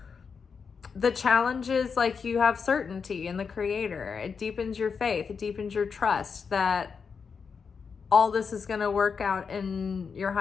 the challenge is, like, you have certainty in the Creator. It deepens your faith. It deepens your trust that all this is going to work out in your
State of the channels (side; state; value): right; quieter; 5.8 dB